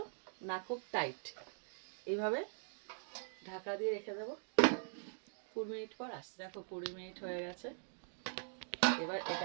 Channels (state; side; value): silent; left; digital silence